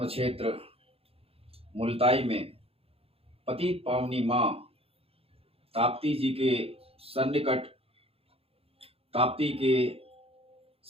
क्षेत्र मुल्ताई में पतित पावनी माँ ताप्ती जी के सन्निकट ताप्ती के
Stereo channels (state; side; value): late; left; 0.28 ms